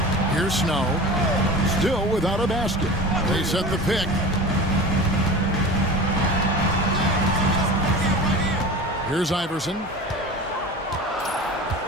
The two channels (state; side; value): normal; both; correlation 0.34